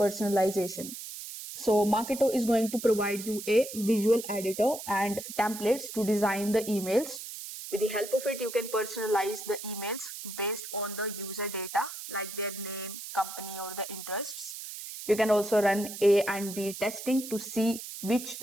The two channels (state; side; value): noise; right; hiss, 10 dB below the sound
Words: So Marketo is going to provide you a visual editor and templates to design the emails. With the help of it, you can personalize the emails based on the user data like their name, company, or the interests. You can also run A and B testing to see which